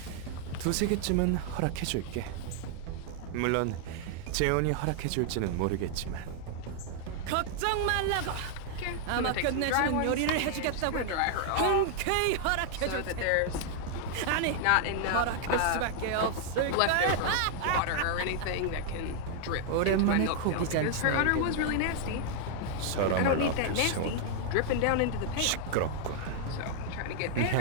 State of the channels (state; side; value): different; both; correlation 0.00